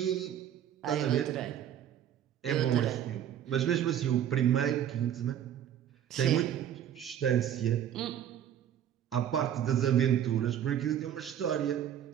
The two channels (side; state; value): left; quieter; 10.1 dB